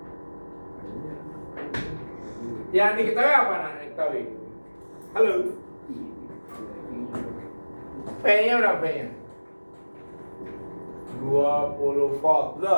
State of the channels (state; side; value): inverted; both; correlation -1.00